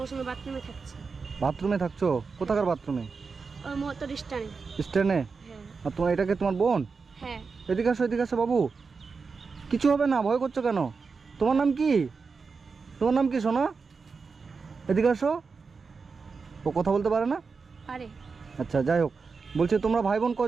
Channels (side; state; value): left; quieter; 4.9 dB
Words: সময় বাথরুমে থাকছি। বাথরুমে থাকছো? কোথাকার বাথরুমে? ওই মোটর স্ট্যান্ডে। স্ট্যান্ডে? হ্যাঁ। আর তোমার এটাকে তোমার বোন? হ্যাঁ। এদিকে আসো বাবু। কিছু হবে না, ভয় করছো কেন? তোমার নাম কি? তোমার নাম কি সোনা? এদিকে আসো। ও কথা বলতে পারে না? পারে। আচ্ছা, যাই হোক, বলছি তোমরা ভাই বোন